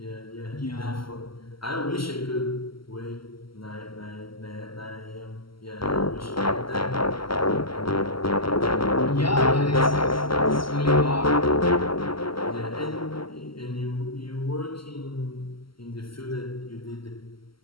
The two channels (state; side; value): late; right; 0.74 ms